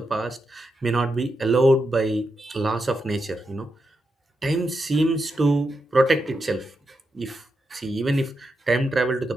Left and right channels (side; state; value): both; normal; correlation 0.86